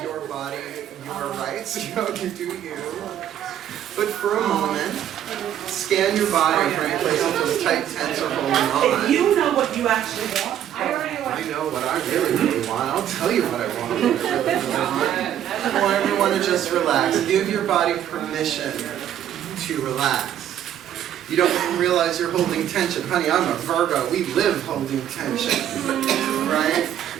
Your body, your rights, you do you. But for a moment, scan your body for any place that feels tight, tense, or holding on. If you know what you actually want. I know what I really, really want. I'll tell you what I want. What I really, really want. I want everyone to just relax. Give your body permission to relax. You don't even realize you're holding tension. Honey, I'm a Virgo. We live holding tension. Right?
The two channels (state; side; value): quieter; left; 10.7 dB